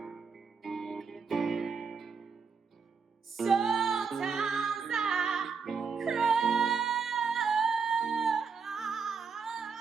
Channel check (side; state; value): left; quieter; 5.6 dB